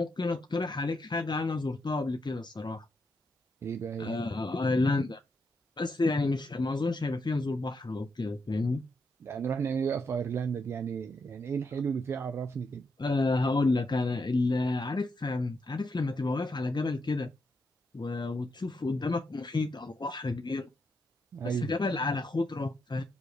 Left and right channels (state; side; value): normal; both; correlation 0.81